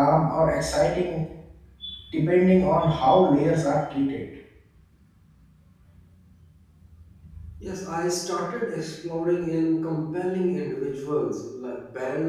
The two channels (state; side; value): identical; both; correlation 1.00